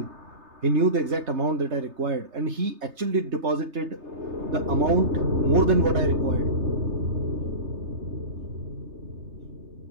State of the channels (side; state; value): left; late; 3.3 ms